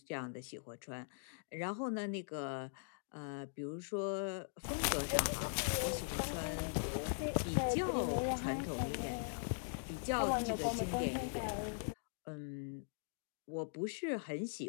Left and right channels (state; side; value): silent; right; digital silence